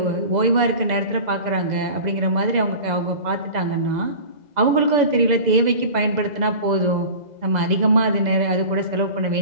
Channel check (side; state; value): left; late; 2.0 ms